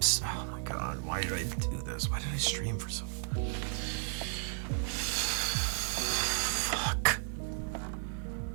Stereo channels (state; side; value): silent; left; digital silence